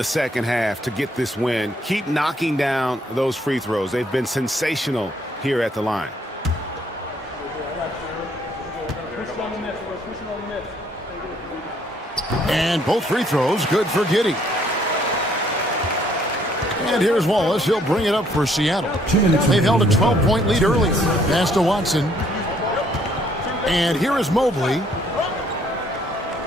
second half to get this win. Keep knocking down those free throws. They've been sensational here at the line. And both free throws good for Giddey. And here's Wallace. He'll bring it up for Seattle. They've held a 12-point lead earlier. Pass to Watson. And here is Mobley.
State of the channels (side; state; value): both; normal; correlation 0.66